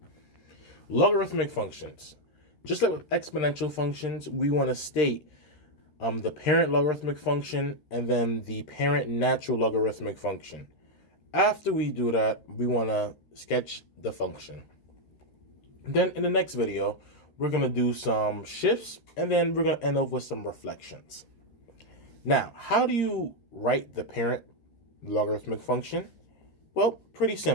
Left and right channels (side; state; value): right; late; 13 ms